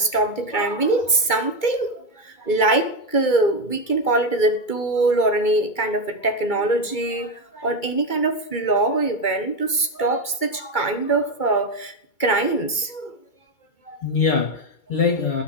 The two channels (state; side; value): late; right; 2.3 ms